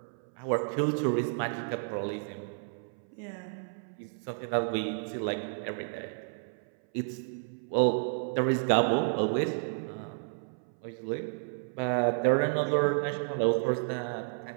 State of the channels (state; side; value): silent; left; 57 dB below the other